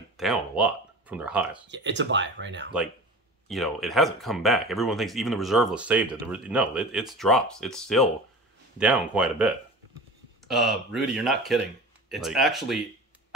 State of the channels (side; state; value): both; normal; correlation 0.36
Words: down a lot from their highs. Yeah, it's a buy right now. Like, you know, it hasn't come back. Everyone thinks even the reserve list saved it. No, it's drops. It's still down quite a bit. Rudy, you're not kidding. It's Like- actually